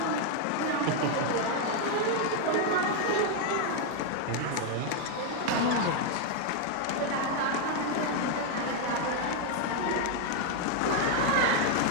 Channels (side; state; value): both; different; correlation 0.00